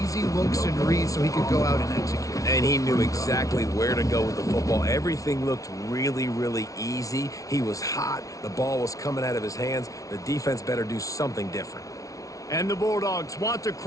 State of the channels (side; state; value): right; late; 0.17 ms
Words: looks and reads so he could go out and execute. And he knew exactly where to go with the football. Everything looked really, really easy. He was hot. The ball was coming out of his hands. The defense better do something different. And the Bulldogs want to